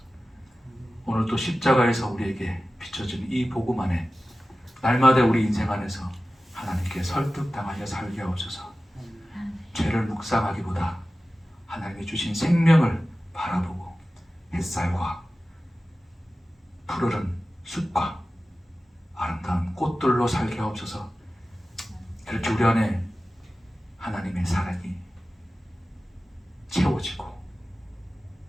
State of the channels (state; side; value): normal; both; correlation 0.95